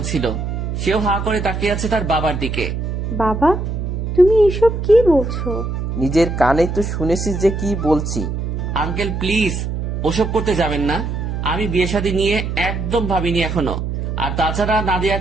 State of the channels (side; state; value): right; noise; hum, 3 dB below the sound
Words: ছিল। সেও হা করে তাকিয়ে আছে তার বাবার দিকে। বাবা, তুমি এসব কি বলছো? নিজের কানে তো শুনেছিস যে কি বলছি। আঙ্কেল প্লিজ, ওসব করতে যাবেন না। আমি বিয়ে শাদী নিয়ে একদম ভাবিনি এখনো। আর তাছাড়া